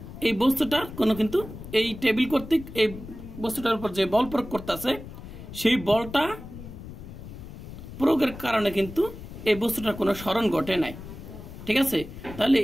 এই বস্তুটার কোনো কিন্তু এই টেবিল কর্তৃক এই বস্তুটার উপর যে বল প্রয়োগ করতেছে, সেই বলটা প্রয়োগের কারণে কিন্তু এই বস্তুটার কোনো সরণ ঘটে নাই, ঠিক আছে। তাহলে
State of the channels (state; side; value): noise; left; rumble, 13 dB below the sound